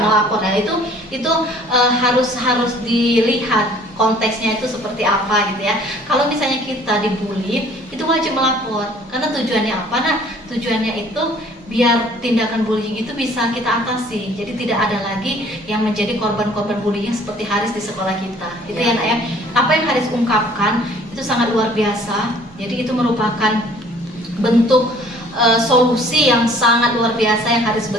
melapor. Nah itu harus dilihat konteksnya itu seperti apa gitu ya. Kalau misalnya kita dibully, itu wajib melapor. Karena tujuannya apa? Nah, tujuannya itu biar tindakan bullying itu bisa kita atasi. Jadi tidak ada lagi yang menjadi korban-korban bullying seperti Haris di sekolah kita. Itu ya Nak ya. Apa yang Haris ungkapkan itu sangat luar biasa. Jadi itu merupakan bentuk solusi yang sangat luar biasa yang Haris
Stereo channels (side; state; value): both; normal; correlation 0.55